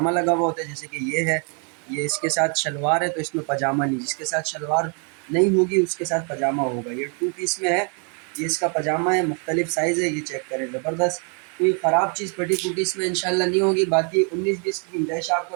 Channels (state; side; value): quieter; left; 38.7 dB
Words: लगा हुआ होता है। जैसे कि ये है, ये इसके साथ शलवार है तो इसमें पजामा नहीं, जिसके साथ शलवार नहीं होगी उसके साथ पजामा होगा। ये टू पीस में है, ये इसका पजामा है, मुख्तलिफ साइज़ है। ये चेक करें, ज़बरदस्त। कोई ख़राब चीज़ फटी फूटी इसमें इंशाल्लाह नहीं होगी। बाकी 19-20 की गुंजाइश